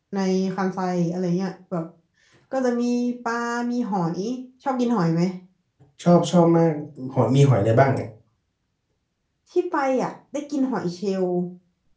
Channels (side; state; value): both; identical; correlation 1.00